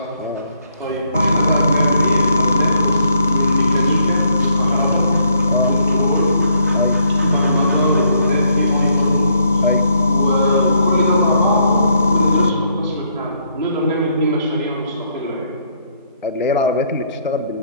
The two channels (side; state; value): both; inverted; correlation -0.71